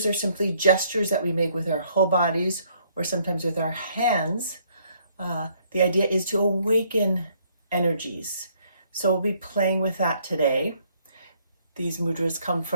are simply gestures that we make with our whole bodies or sometimes with our hands. The idea is to awaken energies. So we'll be playing with that today. These mudras come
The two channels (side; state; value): both; inverted; correlation -0.66